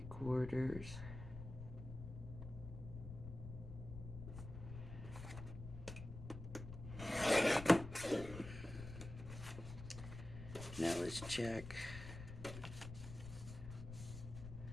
Now let's check.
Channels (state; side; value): noise; left; rumble, 10 dB below the sound